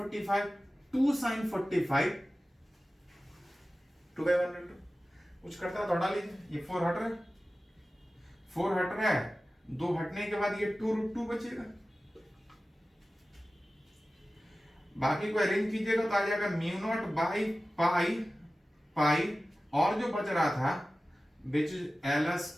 2 sin 45 2/1 कुछ करता है तो हटा लीजिए। ये 4 हट रहा है, 4 हट रहा है, 2 हटने के बाद ये 2√2 बचेगा। बाकी को अरेंज कीजिएगा तो आ जाएगा μ0/π, और जो बच रहा था विच इज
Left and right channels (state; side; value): normal; both; correlation 0.96